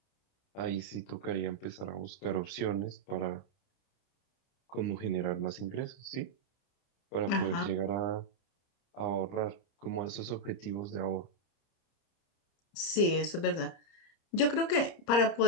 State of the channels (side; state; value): right; late; 30 ms